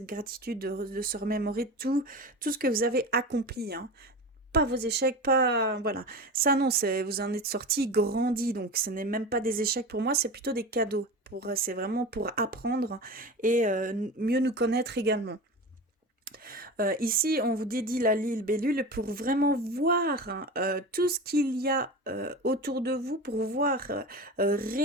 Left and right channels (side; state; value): both; normal; correlation 0.29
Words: gratitude, de se remémorer tout ce que vous avez accompli, hein. pas vos échecs, pas voilà. Ça non, c'est vous en êtes sorti grandi, donc ce n'est même pas des échecs pour moi, c'est plutôt des cadeaux. C'est vraiment pour apprendre et mieux nous connaître également. Ici, on vous dédie la libellule pour vraiment voir tout ce qu'il y a autour de vous, pour voir